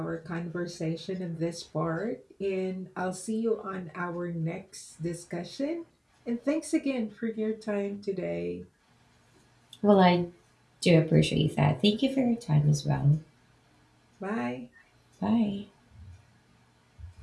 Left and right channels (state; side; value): identical; both; correlation 1.00